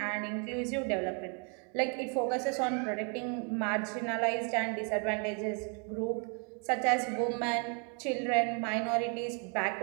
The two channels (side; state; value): left; quieter; 37.8 dB